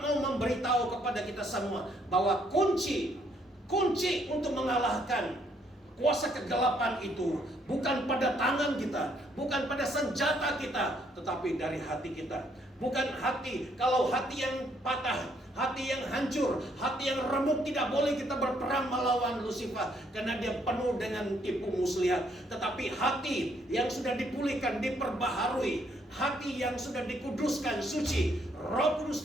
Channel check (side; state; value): both; normal; correlation 0.70